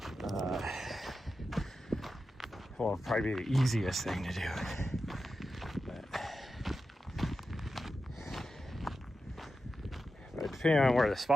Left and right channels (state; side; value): normal; both; correlation 0.91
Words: well, probably be the easiest thing to do. But depending on where the